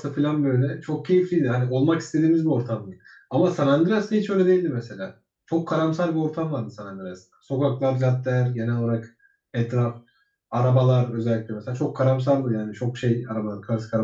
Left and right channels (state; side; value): identical; both; correlation 1.00